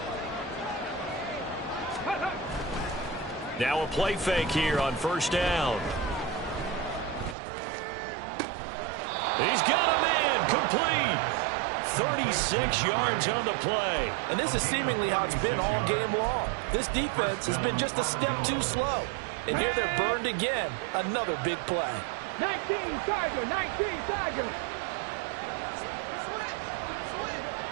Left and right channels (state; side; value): drops out; left; at 7.4 s